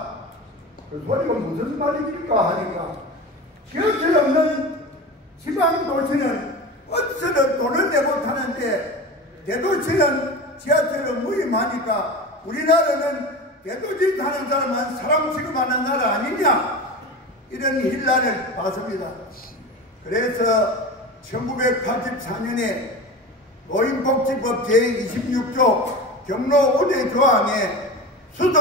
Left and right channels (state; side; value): normal; both; correlation 0.29